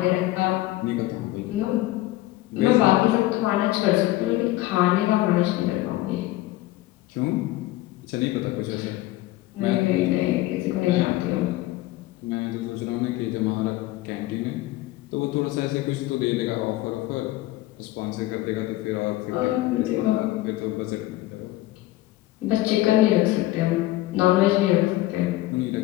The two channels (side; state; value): right; quieter; 16.9 dB